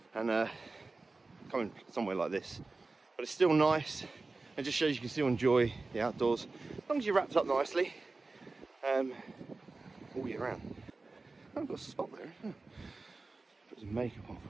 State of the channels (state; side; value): quieter; left; 3.6 dB